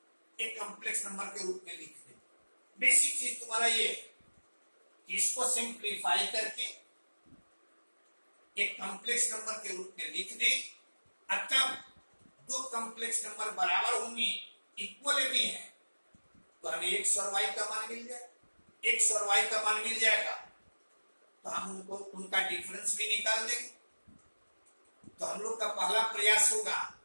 एक कॉम्प्लेक्स नंबर के रूप में लिख दें। बेसिक चीज तुम्हारा ये कि इसको सिंप्लीफाई करके एक कॉम्प्लेक्स नंबर के रूप में लिख दें। तब दो कॉम्प्लेक्स नंबर बराबर होंगे, इक्वल भी हैं, तो हमें x और y का मान मिल जाए। x और y का मान मिल जाएगा तो हम उनका डिफरेंस भी निकाल देंगे। तो हम लोग का पहला प्रयास होगा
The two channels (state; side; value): inverted; both; correlation -1.00